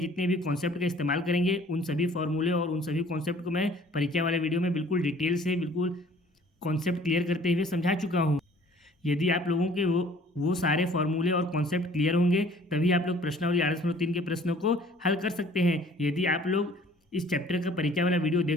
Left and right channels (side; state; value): both; normal; correlation 0.53